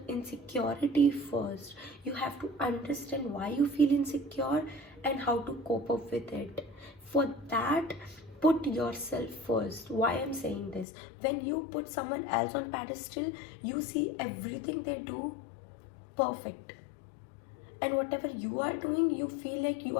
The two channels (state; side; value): drops out; right; at 10.9 s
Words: insecurity first. You have to understand why you feel insecure and how to cope up with it. For that, put yourself first. Why I'm saying this? When you put someone else on pedestal, you see everything they do perfect. And whatever you are doing, you feel like you